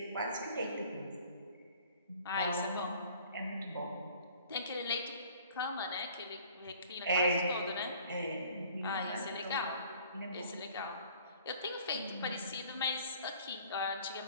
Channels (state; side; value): inverted; both; correlation -0.52